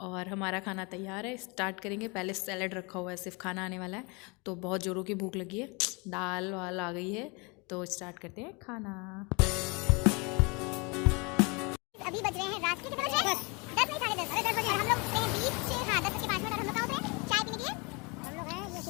और हमारा खाना तैयार है, स्टार्ट करेंगे। पहले सैलड रखा हुआ है, सिर्फ खाना आने वाला है, तो बहुत ज़ोरों की भूख लगी है। दाल वाल आ गई है, तो स्टार्ट करते हैं खाना। अभी बज रहे हैं रात के कितने बजे? 10 नहीं 10:30। अरे 10 बजे हम लोग से बीच से, हाँ 10 के 5 मिनट। और हम लोग कहाँ पे चाय पीने के लिए? हम लोग हैं ये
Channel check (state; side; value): quieter; right; 29.4 dB